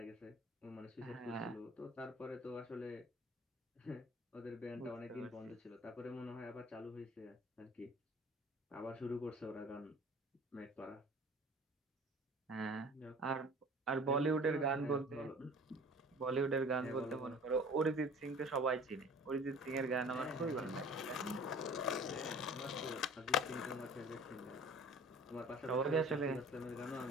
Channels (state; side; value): normal; both; correlation 0.46